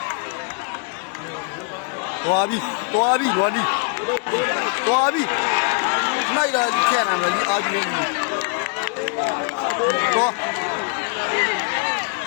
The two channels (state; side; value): quieter; right; 35.3 dB